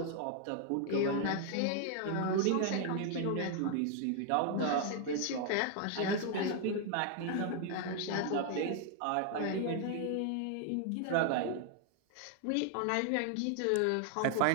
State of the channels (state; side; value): different; both; correlation 0.00